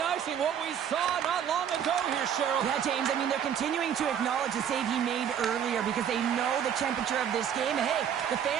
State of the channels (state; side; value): quieter; left; 8.8 dB